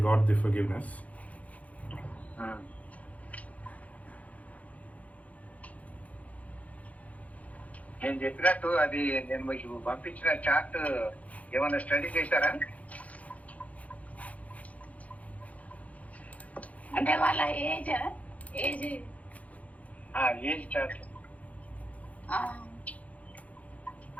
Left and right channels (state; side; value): late; right; 0.069 ms